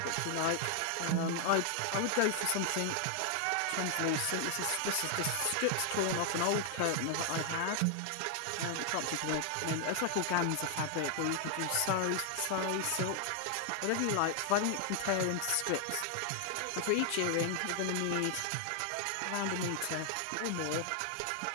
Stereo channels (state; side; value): different; both; correlation 0.00